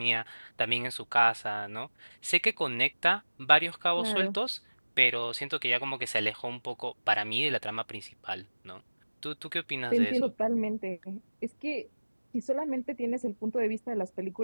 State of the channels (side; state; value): both; inverted; correlation -1.00